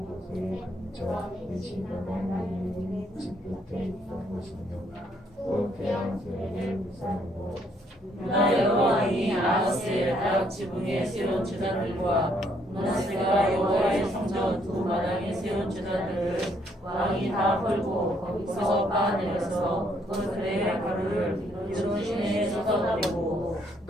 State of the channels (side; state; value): both; normal; correlation 0.69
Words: 곳에 왕이 계신 하나님의 집 끝에 있던 곳이며 또 태양 세례를 무사하고 유다 여러 왕이 아하스의 각 지붕에 세운 제단들과 문하세가 여호와의 성전 두 마당에 세운 제단들을 왕이 다 헐고 거기서 빻아내려서 그들의 가루를 기드론 시내에 쏟아버리고